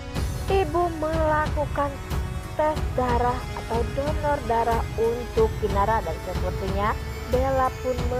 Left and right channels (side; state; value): both; identical; correlation 1.00